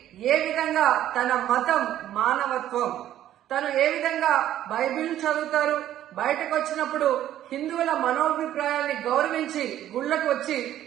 ఏ విధంగా తన మతం మానవత్వం, తను ఏ విధంగా బైబిల్ చదువుతారు, బయటకు వచ్చినప్పుడు హిందువుల మనోభిప్రాయాల్ని గౌరవించి గుళ్లకు వచ్చి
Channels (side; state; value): left; quieter; 12.2 dB